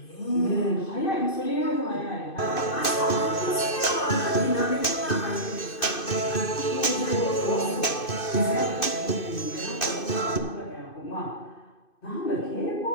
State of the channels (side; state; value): right; late; 2.5 ms